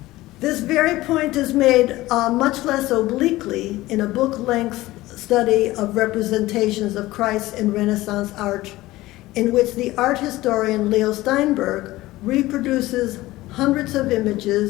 very point is made much less obliquely in a book-length study of representations of Christ in Renaissance art, in which the art historian Leo Steinberg reproduces hundreds of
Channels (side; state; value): right; quieter; 17.8 dB